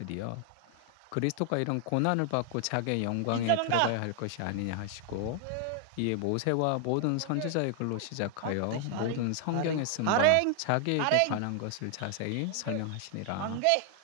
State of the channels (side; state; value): both; different; correlation 0.00